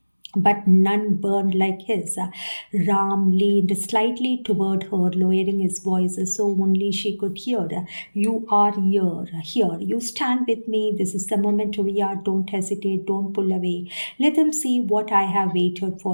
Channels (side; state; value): both; inverted; correlation -1.00